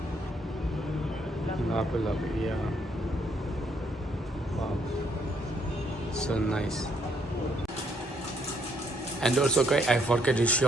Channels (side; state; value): both; normal; correlation 0.70